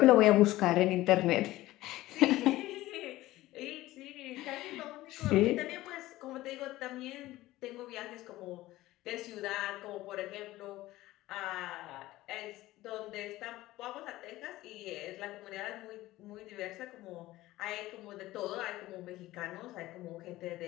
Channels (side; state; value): right; quieter; 17.0 dB